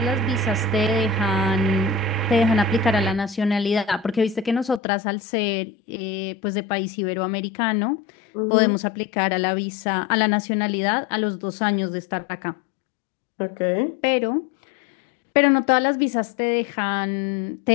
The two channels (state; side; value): drops out; right; at 4.8 s